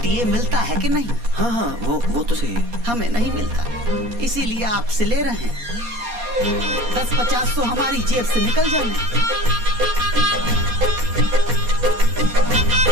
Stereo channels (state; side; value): late; left; 4.2 ms